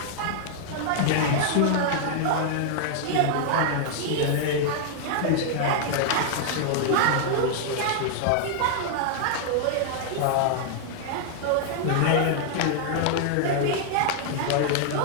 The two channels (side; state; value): both; different; correlation 0.00